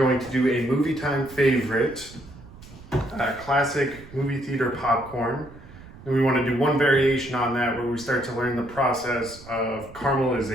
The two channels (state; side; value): noise; right; rumble, 19 dB below the sound